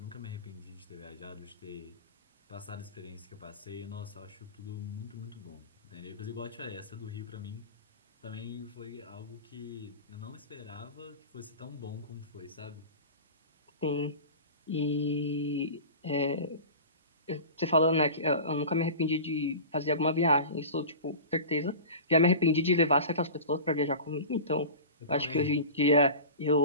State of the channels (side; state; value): both; inverted; correlation -0.34